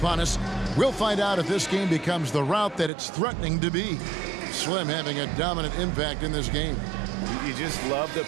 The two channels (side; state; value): left; drops out; at 2.9 s